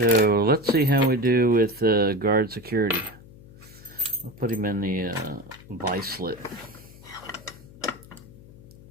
let's see how we do with guard security. I'll put him in the vice slit.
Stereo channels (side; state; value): left; noise; hum, 21 dB below the sound